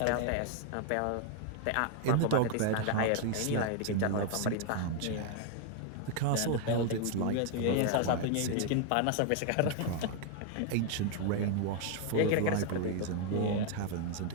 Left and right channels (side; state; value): both; different; correlation 0.00